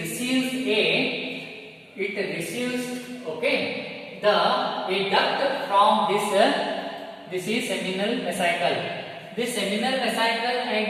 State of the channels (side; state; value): both; identical; correlation 1.00